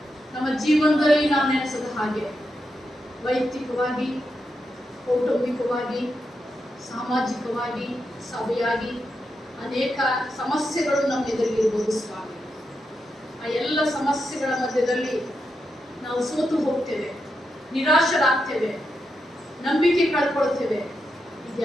ನಮ್ಮ ಜೀವನದಲ್ಲಿ ನಾವು ನೆನೆಸದ ಹಾಗೆ ವೈಯಕ್ತಿಕವಾಗಿ, ಕೌಟುಂಬಿಕವಾಗಿ, ಸಾಮಾಜಿಕವಾಗಿ, ಸಭೆಯಾಗಿ ಅನೇಕ ಸಮಸ್ಯೆಗಳು ನಮ್ಮ ಎದುರಿಗಿರ್ಬೋದು ಸ್ವಾಮಿ. ಆ ಎಲ್ಲ ಸಮಸ್ಯೆಗಳ ಮಧ್ಯದಲ್ಲಿ ನಾವು ಸೋತು ಹೋಗ್ತೇವೆ, ನಿರಾಶರಾಗ್ತೇವೆ, ನಂಬಿಕೆ ಕಳ್ಕೊಳ್ತೇವೆ.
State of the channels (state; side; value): normal; both; correlation 0.85